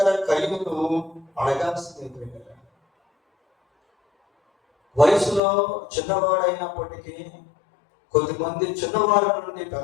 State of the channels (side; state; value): right; drops out; at 5.4 s